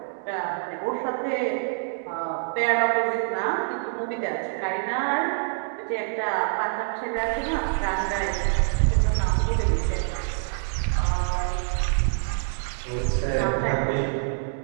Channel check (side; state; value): left; silent; 61 dB below the other